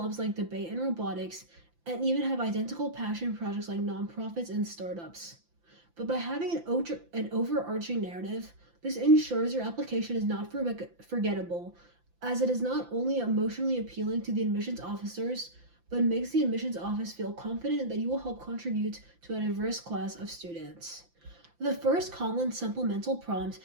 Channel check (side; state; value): left; late; 5.9 ms